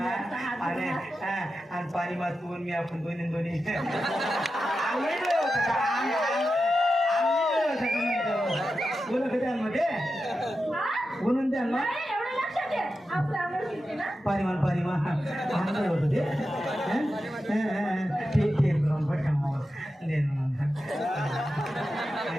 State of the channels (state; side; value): normal; both; correlation 0.90